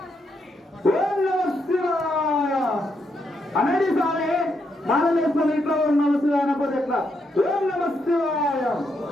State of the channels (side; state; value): both; normal; correlation 0.79